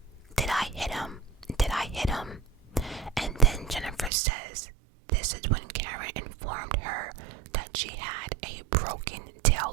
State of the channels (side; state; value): left; drops out; at 4.1 s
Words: I hit him? Did I hit him? And then Jennifer says this is when Karen informed her that she had a broken